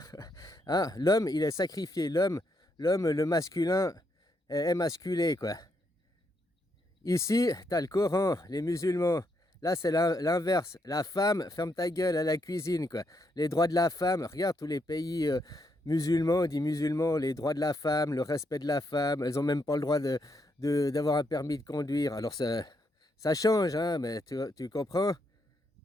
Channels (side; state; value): both; normal; correlation 0.78